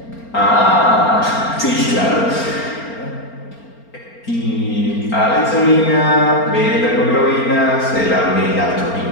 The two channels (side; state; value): right; late; 4.4 ms